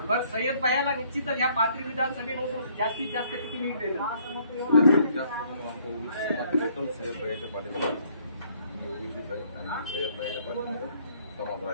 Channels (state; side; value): inverted; both; correlation -0.64